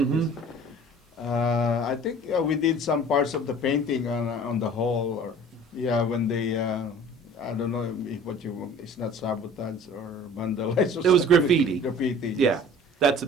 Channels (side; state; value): both; normal; correlation 0.46